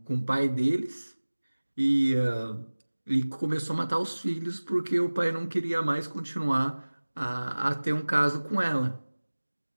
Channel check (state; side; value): inverted; both; correlation -1.00